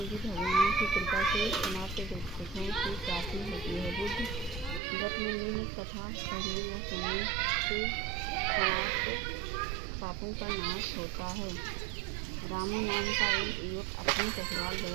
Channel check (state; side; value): drops out; left; at 4.8 s